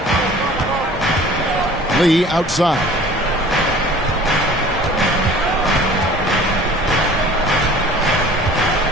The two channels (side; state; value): both; normal; correlation 0.47